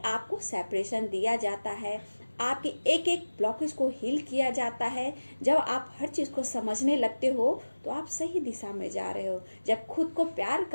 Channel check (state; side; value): inverted; both; correlation -1.00